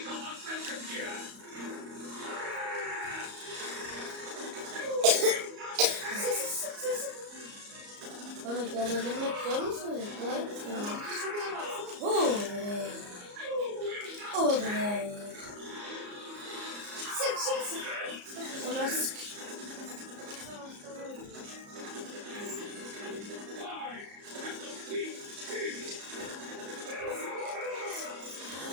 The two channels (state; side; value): late; left; 34 ms